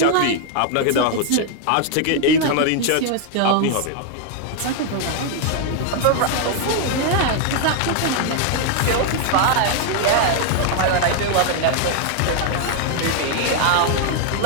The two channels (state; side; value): different; both; correlation 0.00